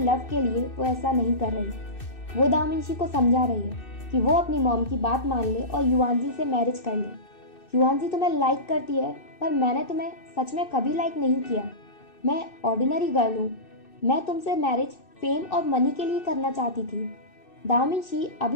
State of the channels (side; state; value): right; late; 2.6 ms